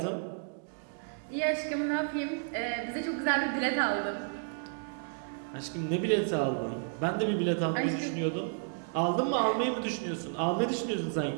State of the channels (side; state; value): left; silent; digital silence